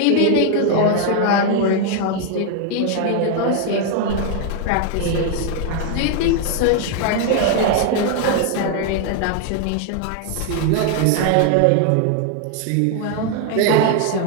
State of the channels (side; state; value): both; different; correlation 0.00